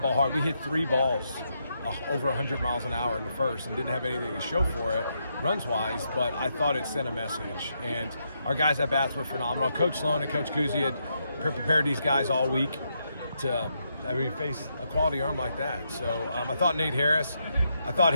hard. We hit 3 balls over 100 miles an hour in the first and didn't have anything to show for it runs-wise, but I thought it sent a message. And our guys at bats were phenomenal. Coach Sloan and Coach Kuzi had prepared these guys all week to face a quality arm like that. So I thought Nate Harris, I thought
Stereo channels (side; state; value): both; inverted; correlation -0.80